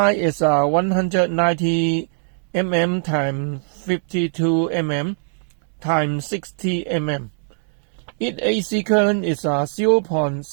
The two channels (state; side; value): silent; left; digital silence